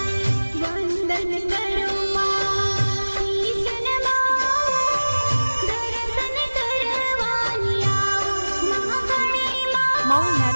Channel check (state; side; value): inverted; both; correlation -1.00